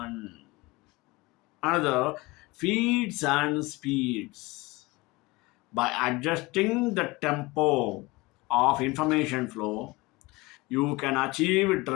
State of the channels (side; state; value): right; quieter; 22.7 dB